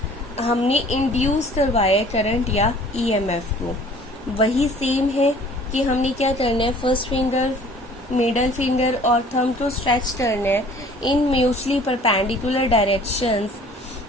हमने इंड्यूस करवाया करंट या ईएमएफ को। वही सेम है कि हमने क्या करना है, फर्स्ट फिंगर, मिडल फिंगर और थंब को स्ट्रेच करना है इन म्यूचुअली परपेंडिकुलर डायरेक्शंस।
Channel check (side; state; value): both; normal; correlation 0.51